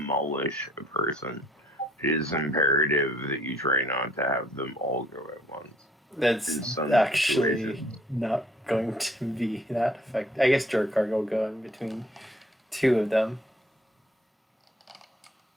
a person. It is imperative that you try not to have them all go at once. In That's some actually situations. not going to be that effective. I guess Jorkar will go in between two of them.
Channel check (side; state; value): both; normal; correlation 0.60